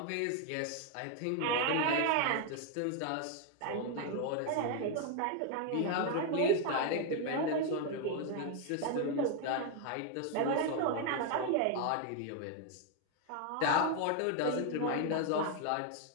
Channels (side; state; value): both; different; correlation 0.01